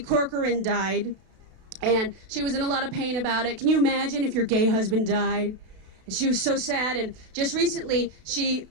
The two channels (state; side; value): late; left; 32 ms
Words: Corcoran, died. And she was in a lot of pain about it. Can you imagine if your gay husband died? And she was so sad, and just recently she